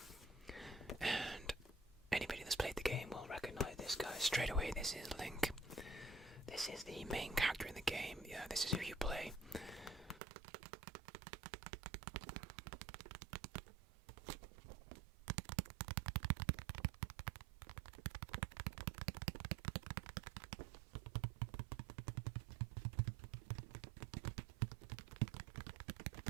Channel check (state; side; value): drops out; left; at 10.2 s